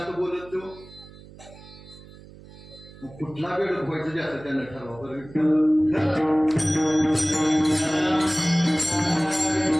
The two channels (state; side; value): noise; right; hum, 20 dB below the sound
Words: बोलत तो मग कुठला बेडक व्हायचं जास्त त्यानं ठरवा.